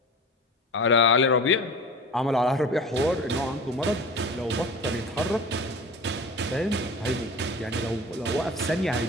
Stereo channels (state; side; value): normal; both; correlation 0.36